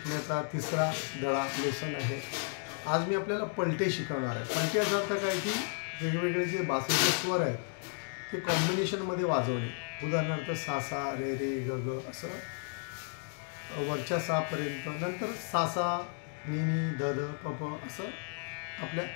तिसरा धडा लेसन आहे। आज मी आपल्याला पलटे शिकवणार आहे। पलटे याचा अर्थ काय की वेगवेगळे जे बासरीचे स्वर आहेत ते कॉम्बिनेशनमध्ये वाजवणे। उदाहरणार्थ सा सा रे रे ग ग असं वरच्या सा पर्यंत, नंतर सा सा नी नी ध ध प प असं आपल्या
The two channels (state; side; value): silent; right; 56 dB below the other